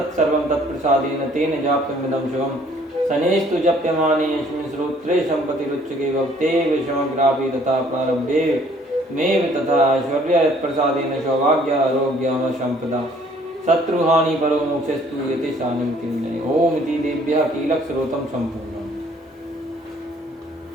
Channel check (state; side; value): normal; both; correlation 0.59